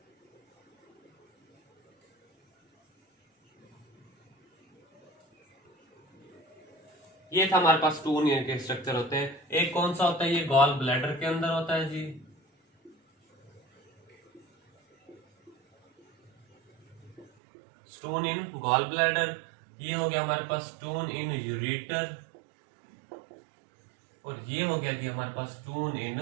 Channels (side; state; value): left; drops out; at 17.3 s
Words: ये था हमारे पास स्टोन के स्ट्रक्चर होते हैं। एक कौन सा होता है, ये गॉल ब्लैडर के अंदर होता है जी, स्टोन इन गॉल ब्लैडर। ये हो गया हमारे पास स्टोन इन यूरेटर, और ये हो गया जी हमारे पास स्टोन इन